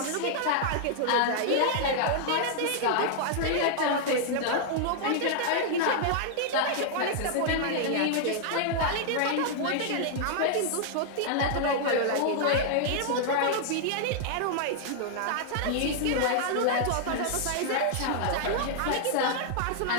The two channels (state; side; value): different; both; correlation -0.01